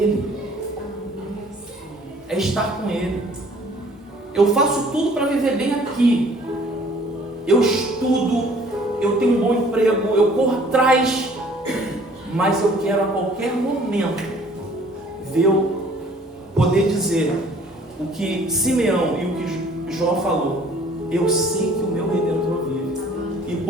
É estar com ele. Eu faço tudo para viver bem aqui. Eu estudo, eu tenho um bom emprego, eu corro atrás, mas eu quero a qualquer momento poder dizer o que Simeão e o que Jó falou: eu sei que o meu Redentor vive e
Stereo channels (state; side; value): normal; both; correlation 0.55